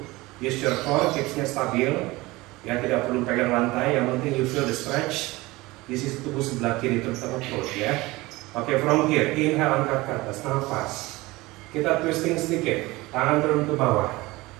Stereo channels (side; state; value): left; quieter; 20.9 dB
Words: Use your core, hipsnya stabil. Ya, tidak perlu pegang lantai. Yang penting you feel the stretch. Di sisi tubuh sebelah kiri terutama perut ya. Oke, from here, inhale angkat ke atas, nafas. Kita twisting sedikit, tangan turun ke bawah.